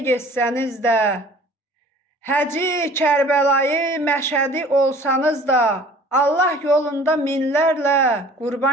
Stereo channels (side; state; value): both; normal; correlation 0.49